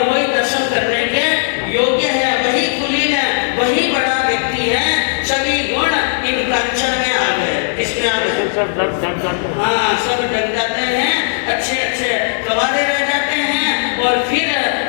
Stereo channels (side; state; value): right; silent; digital silence